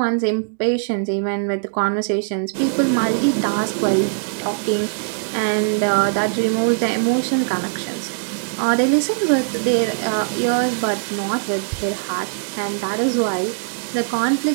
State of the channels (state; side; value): silent; left; digital silence